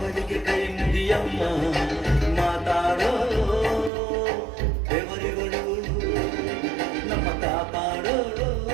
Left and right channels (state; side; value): drops out; left; at 3.9 s